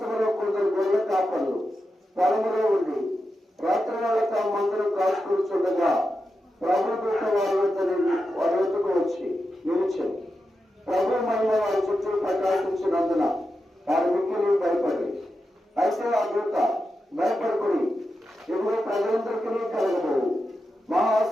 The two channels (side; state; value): both; normal; correlation 0.89